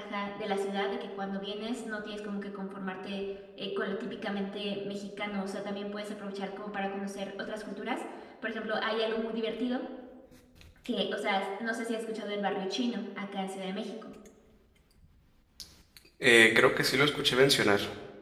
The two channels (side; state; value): both; identical; correlation 1.00